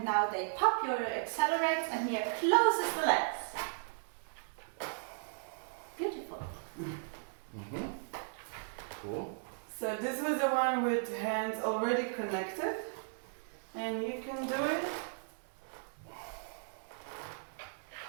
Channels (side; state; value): left; silent; digital silence